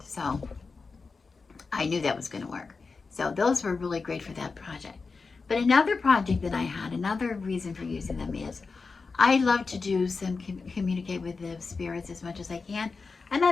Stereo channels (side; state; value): right; quieter; 4.4 dB